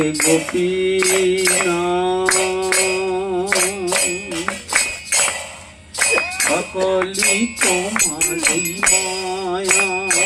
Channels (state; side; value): identical; both; correlation 1.00